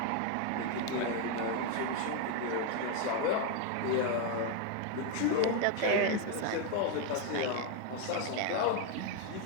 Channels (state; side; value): different; both; correlation 0.01